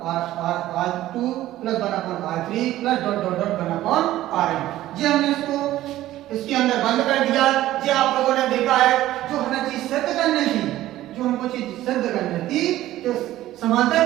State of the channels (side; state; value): left; quieter; 14.7 dB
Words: plus 1/R3 plus dot dot dot 1/RN। ये हमने इसको इसके अंदर बंद कर दिया। ये आप लोगों ने देखा है जो हमें चीज सिद्ध करनी थी, जो हमको चीज सिद्ध करनी थी कि समांतर